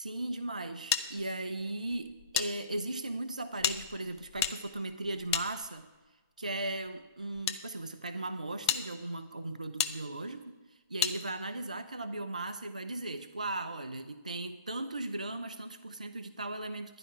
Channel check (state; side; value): inverted; both; correlation -0.49